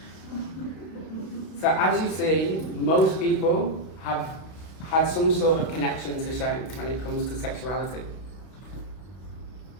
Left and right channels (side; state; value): right; late; 32 ms